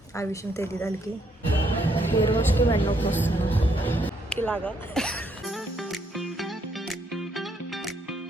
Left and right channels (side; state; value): both; normal; correlation 0.72